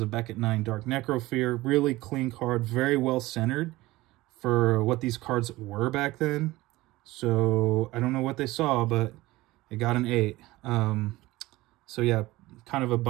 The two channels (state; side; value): quieter; left; 18.8 dB